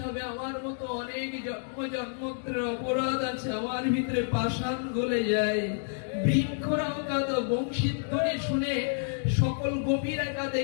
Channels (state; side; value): silent; right; digital silence